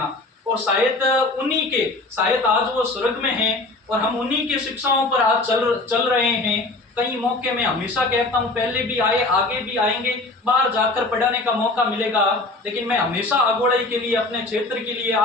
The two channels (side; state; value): right; quieter; 3.1 dB